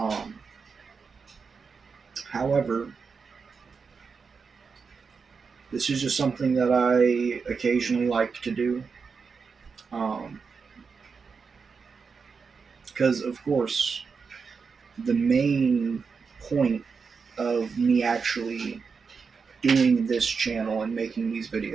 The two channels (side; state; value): left; quieter; 5.3 dB